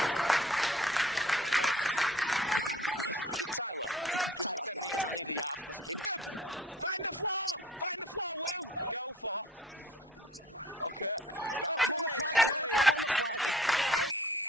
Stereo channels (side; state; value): both; normal; correlation 0.51